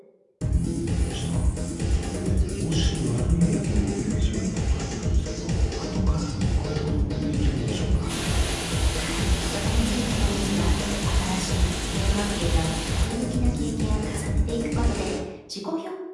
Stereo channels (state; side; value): identical; both; correlation 1.00